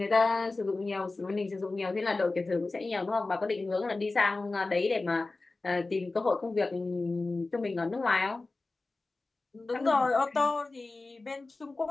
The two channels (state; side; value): quieter; right; 3.4 dB